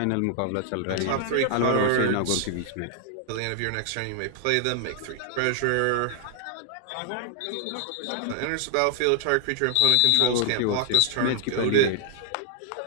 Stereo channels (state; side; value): different; both; correlation 0.00